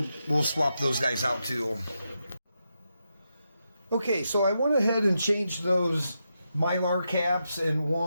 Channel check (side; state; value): both; inverted; correlation -0.85